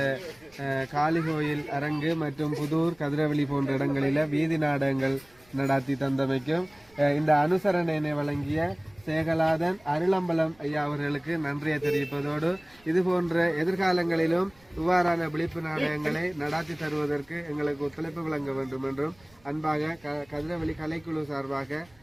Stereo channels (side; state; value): right; noise; rumble, 29 dB below the sound